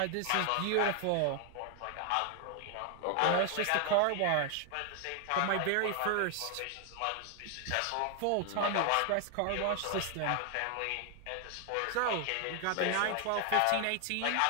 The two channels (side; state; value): both; different; correlation 0.00